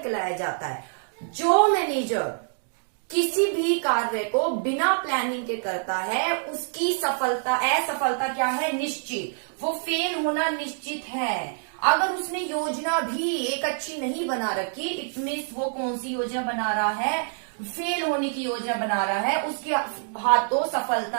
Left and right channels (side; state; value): left; silent; digital silence